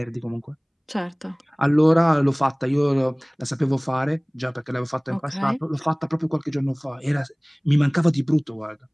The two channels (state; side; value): identical; both; correlation 1.00